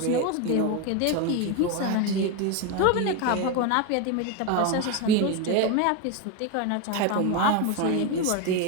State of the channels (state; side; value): different; both; correlation 0.03